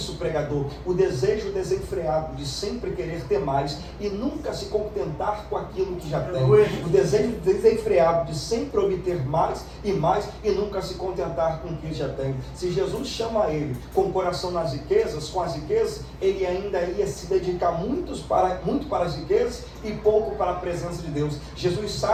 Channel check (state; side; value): identical; both; correlation 1.00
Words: pregador? O desejo desenfreado de sempre querer ter mais e nunca se contentar com aquilo que já tem. O desejo desenfreado de sempre obter mais e nunca se contentar com o que já tem. Se Jesus chama ele com o coração nas riquezas, com as riquezas, ele ainda ia se dedicar muito para as riquezas e pouco para a presença de Deus. Jesus